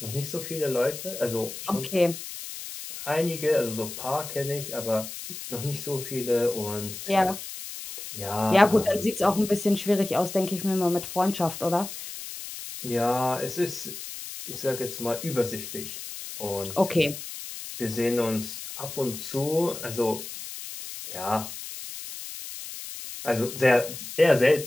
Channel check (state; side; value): noise; left; hiss, 10 dB below the sound